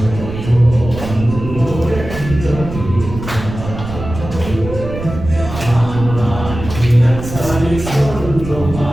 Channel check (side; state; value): right; noise; rumble, 9 dB below the sound